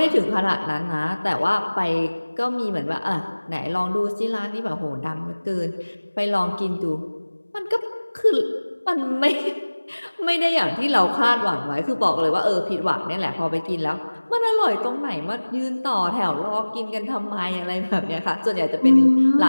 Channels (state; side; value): inverted; both; correlation -1.00